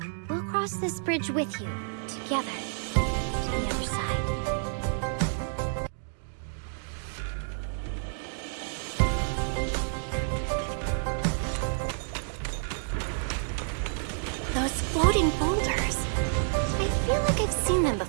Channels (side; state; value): left; silent; digital silence